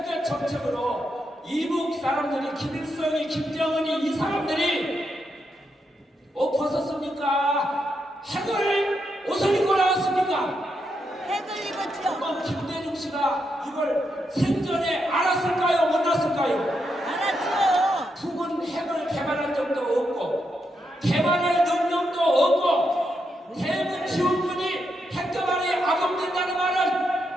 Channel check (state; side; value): normal; both; correlation 0.82